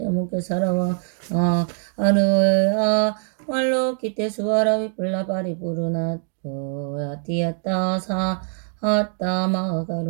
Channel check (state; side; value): silent; left; 57 dB below the other